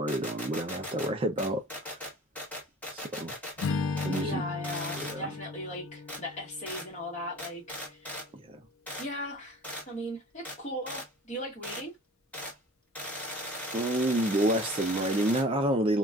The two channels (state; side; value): normal; both; correlation 0.44